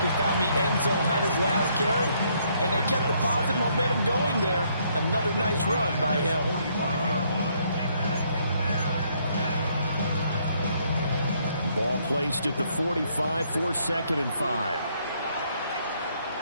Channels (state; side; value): inverted; both; correlation -0.69